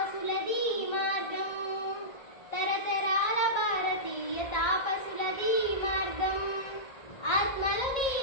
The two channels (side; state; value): right; late; 1.9 ms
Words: మార్గం తరతరాల భారతీయ తాపసులది మార్గం ఆత్మలో